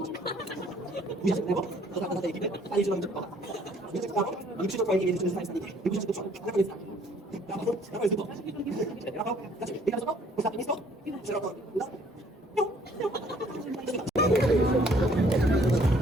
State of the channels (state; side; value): normal; both; correlation 0.61